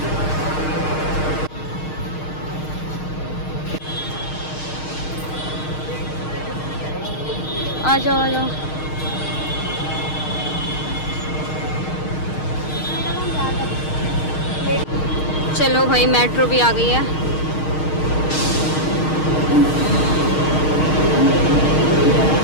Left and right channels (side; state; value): right; late; 6.5 ms